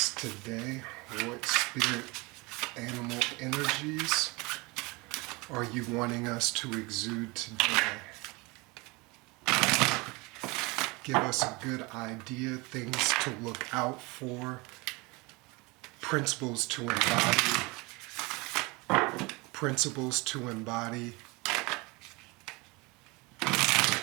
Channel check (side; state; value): left; quieter; 25.7 dB